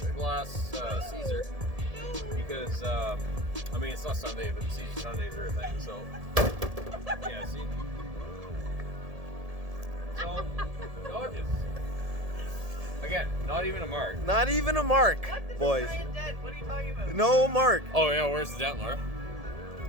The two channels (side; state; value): left; late; 1.7 ms